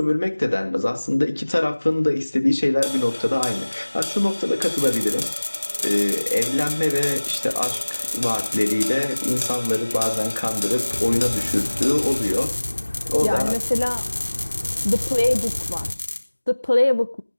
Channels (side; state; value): both; inverted; correlation -1.00